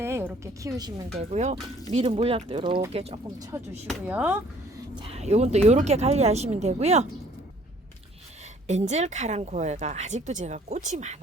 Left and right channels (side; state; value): both; normal; correlation 0.58